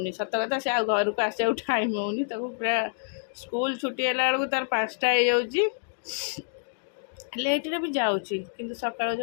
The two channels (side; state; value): right; silent; digital silence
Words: ସତ କଥା ସେ ଆଉ ଘରକୁ ଆସିବାକୁ ଟାଇମ୍ ହେଉନି ତାକୁ ପୁରା ସ୍କୁଲ ଛୁଟି ହେଲା ବେଳକୁ ତାର 5ଟା ହେଇଯାଉଛି ଲେଟ୍ରେ ବି ଯାଉଛି କିନ୍ତୁ ସକାଳୁ